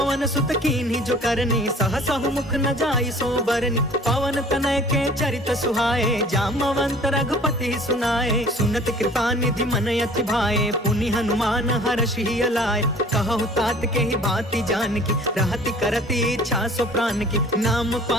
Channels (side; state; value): both; normal; correlation 0.49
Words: सुत कीन्ही जो करनी, सहसहु मुख न जाई सो बरनी। पवन तनय के चरित सुहाए, जामवंत रघुपति सुनाए। सुनत कृपा निधि मन अति भाए, पुनि हनुमान हर्ष ही अलाए। कहु तात के ही बाती जान की, रहति करती इच्छा सो प्राण की। नाम